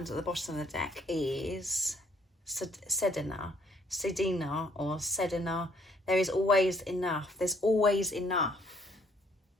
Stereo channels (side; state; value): both; normal; correlation 0.66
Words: at the bottom of the deck is Sedina or Sedina. There is always enough. There's always enough.